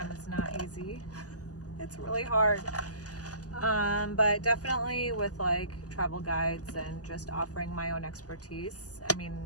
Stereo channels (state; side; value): late; right; 0.67 ms